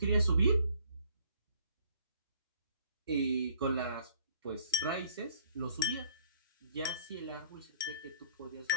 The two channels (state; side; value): inverted; both; correlation -0.59